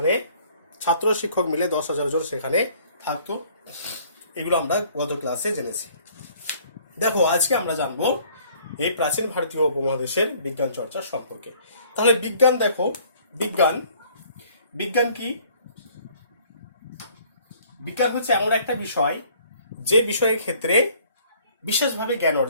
ছাত্র শিক্ষক মিলে 10,000 জন সেখানে থাকতো। এগুলো আমরা গত ক্লাসে জেনেছি। দেখো, আজকে আমরা জানবো এই প্রাচীন ভারতীয় উপমহাদেশের বিজ্ঞান চর্চা সম্পর্কে। তাহলে বিজ্ঞান, দেখো বিজ্ঞান কি? বিজ্ঞান হচ্ছে এমন একটা বিষয় যে বিষয়ের ক্ষেত্রে বিশেষভাবে জ্ঞান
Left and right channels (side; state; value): both; inverted; correlation -0.57